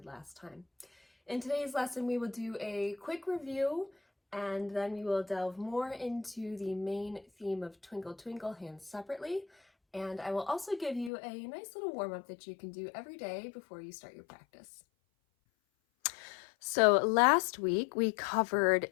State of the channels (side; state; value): right; drops out; at 11.1 s